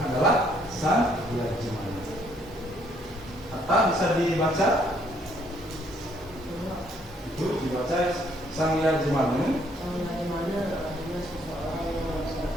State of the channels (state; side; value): normal; both; correlation 0.67